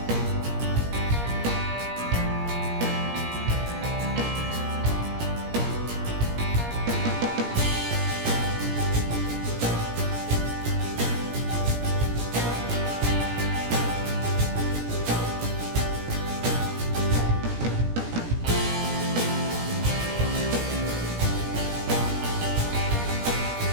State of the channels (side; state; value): left; late; 17 ms